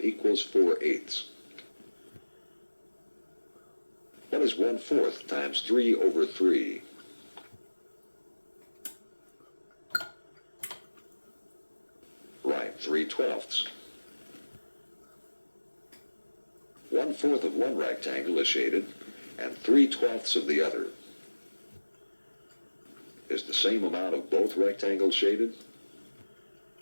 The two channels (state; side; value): inverted; both; correlation -1.00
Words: equals 4/8. What is 1/4 times 3 over 3? Right, 3/12. 1/4 of one rectangle is shaded, and 3/12 of the other. Is the same amount of both rectangles shaded?